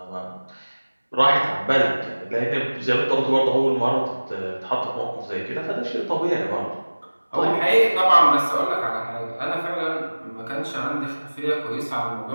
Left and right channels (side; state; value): both; inverted; correlation -1.00